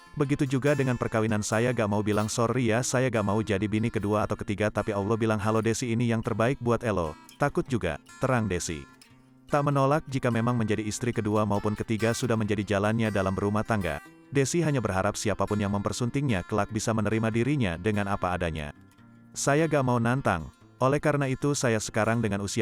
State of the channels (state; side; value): identical; both; correlation 1.00